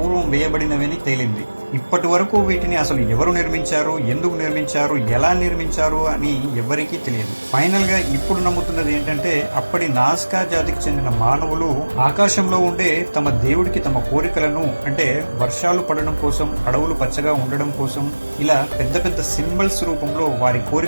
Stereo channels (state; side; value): inverted; both; correlation -1.00